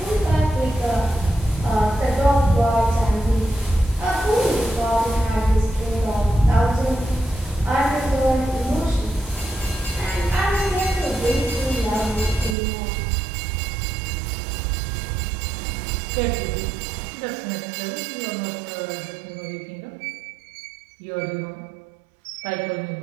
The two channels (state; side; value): drops out; left; at 12.6 s